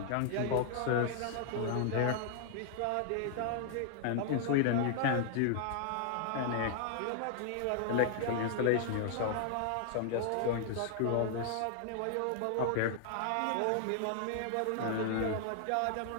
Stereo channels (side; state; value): both; different; correlation 0.00